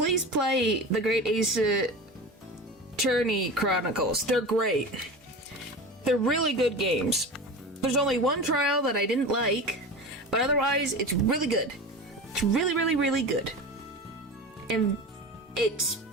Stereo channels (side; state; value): both; normal; correlation 0.30